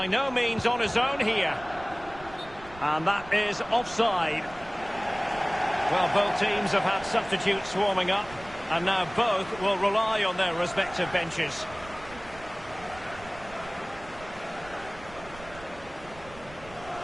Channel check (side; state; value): right; noise; rumble, 19 dB below the sound